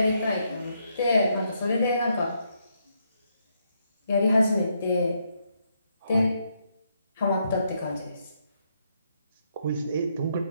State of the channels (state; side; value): inverted; both; correlation -0.77